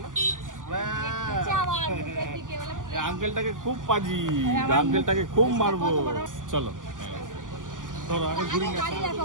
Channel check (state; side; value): late; left; 0.88 ms